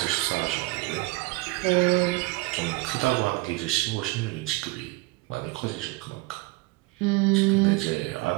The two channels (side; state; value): left; quieter; 23.6 dB